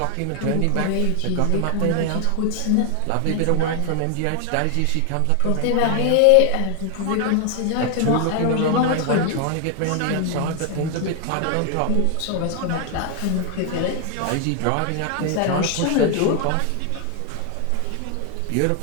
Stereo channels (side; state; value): both; different; correlation 0.00